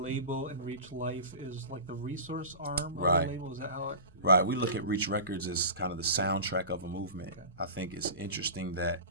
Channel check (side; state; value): both; inverted; correlation -0.33